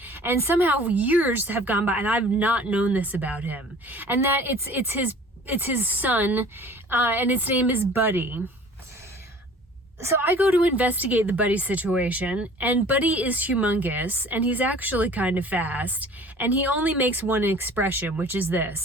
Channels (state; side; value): normal; both; correlation 0.47